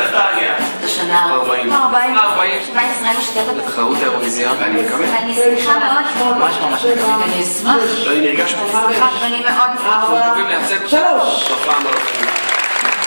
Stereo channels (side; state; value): both; inverted; correlation -1.00